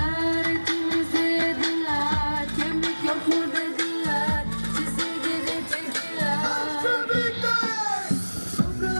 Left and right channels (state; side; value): inverted; both; correlation -1.00